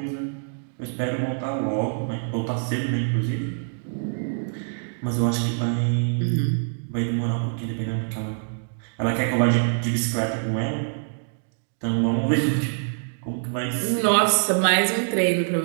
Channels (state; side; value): silent; left; digital silence